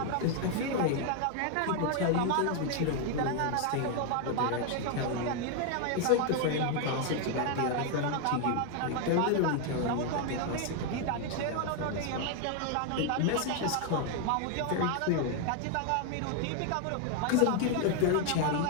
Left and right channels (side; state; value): both; different; correlation 0.00